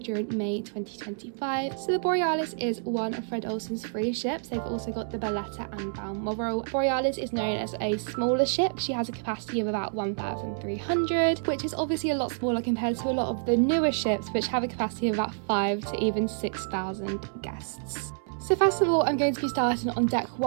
May 2025. So the Borealis is one of Fred Olsen's 3 ships. They've also got the Berletta and Balmoral. Borealis is known as a smaller ship. She has a capacity of about 1,300, which is obviously a lot smaller compared to a lot of the newer ships, which have a capacity of about 5 to even 6,000 guests. So first of all, I'm going to be starting on deck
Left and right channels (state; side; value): silent; left; 59 dB below the other